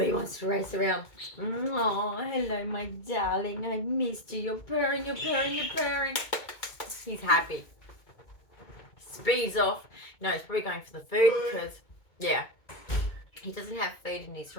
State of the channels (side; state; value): right; late; 2.2 ms